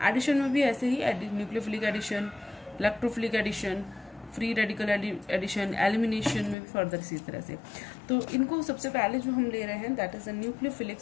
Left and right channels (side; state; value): right; drops out; at 6.6 s